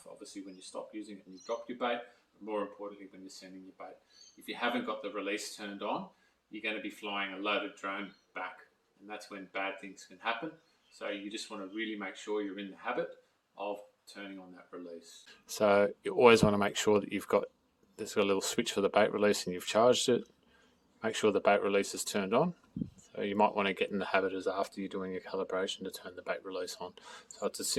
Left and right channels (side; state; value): both; identical; correlation 1.00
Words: obviously when you stop using it and you drop your bait, but more importantly when you're sending your bait. If you haven't got the release turned on, you're going to be flying a loaded drone back, and that's when bad things can happen. So you just want to really make sure you're in the habit of turning on that release. So you always want to make sure that there's got a little switch for the bait release and you've charged it. Make sure the bait release is turned on. So you might want to get in the habit as after you're doing your calibration to turn the bait release on. So it's as